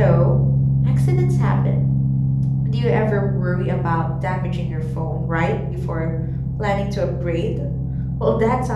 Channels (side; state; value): both; identical; correlation 1.00